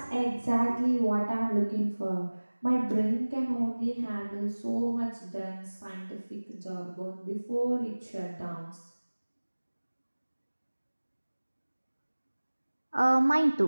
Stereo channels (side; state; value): both; inverted; correlation -1.00